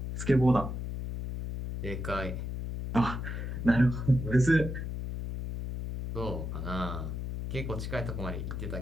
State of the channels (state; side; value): noise; left; hum, 5 dB below the sound